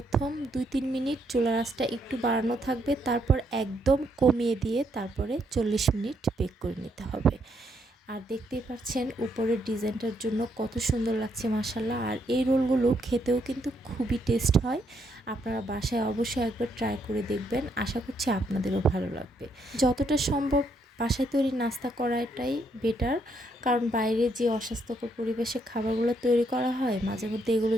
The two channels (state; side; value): normal; both; correlation 0.74